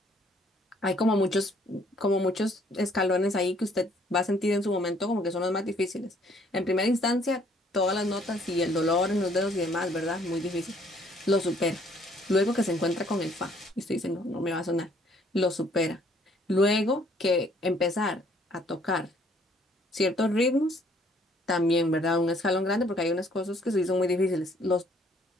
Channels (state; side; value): normal; both; correlation 0.62